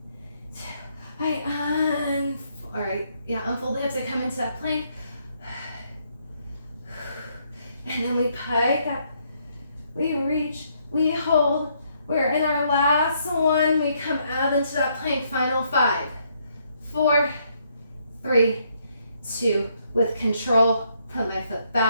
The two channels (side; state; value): both; inverted; correlation -0.72